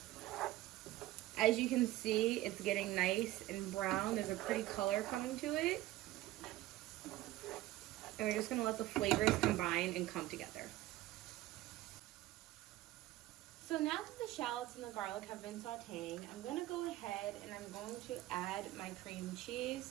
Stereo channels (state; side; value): quieter; left; 16.2 dB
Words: As you can see, it's getting nice and brown. There's a pretty color coming to it. And we're just going to let the flavors combine and come together. So now that the shallots and the garlic have been sauteing, I'm going to go ahead and I'm going to add my cream